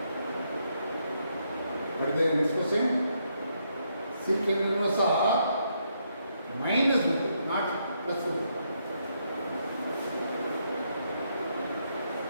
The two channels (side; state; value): both; inverted; correlation -0.77